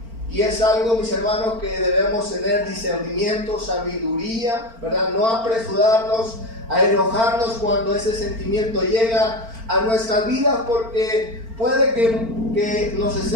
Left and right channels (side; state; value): left; late; 4.4 ms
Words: Y es algo, mis hermanos, que debemos tener discernimiento, sabiduría, ¿verdad? No apresurarnos a enojarnos cuando ese sentimiento llega a nuestras vidas, porque puede que nos